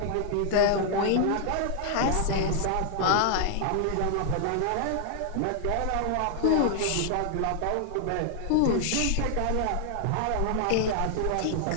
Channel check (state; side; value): different; both; correlation 0.00